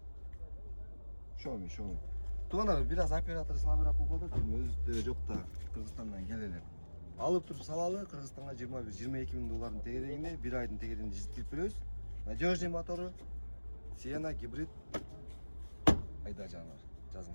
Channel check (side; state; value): both; inverted; correlation -1.00